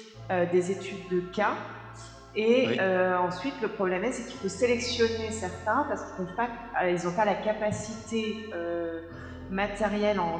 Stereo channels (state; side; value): identical; both; correlation 1.00